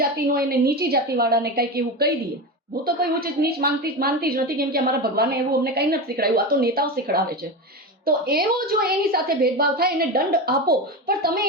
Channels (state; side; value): normal; both; correlation 0.20